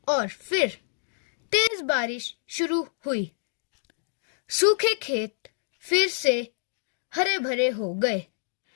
और फिर तेज बारिश शुरू हुई। सूखे खेत फिर से हरे भरे हो गए।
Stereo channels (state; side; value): silent; right; digital silence